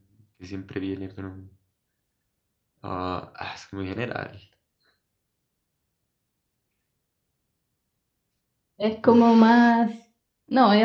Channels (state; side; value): identical; both; correlation 1.00